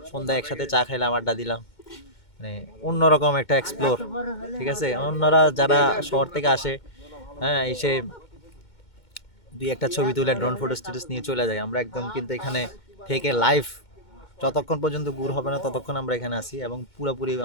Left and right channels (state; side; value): late; right; 2.2 ms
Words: সন্ধ্যায় একসাথে চা খাইলাম, আড্ডা দিলাম, মানে অন্যরকম একটা এক্সপ্লোর। ঠিক আছে, অন্যরা যারা শহর থেকে আসে, হ্যাঁ, এসে দুই একটা ছবি তুলে ড্রোন ফটো স্ট্যাটাস নিয়ে চলে যায়, আমরা একদম কিন্তু এখানে থেকে লাইভ যতক্ষণ পর্যন্ত গুড় হবে না ততক্ষণ আমরা এখানে আছি, এবং পুরোপুরি